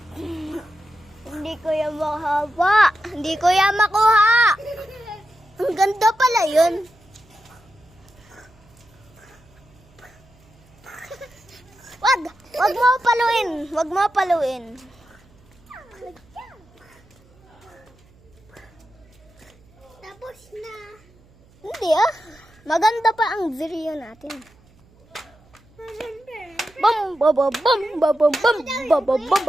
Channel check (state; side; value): noise; right; hum, 29 dB below the sound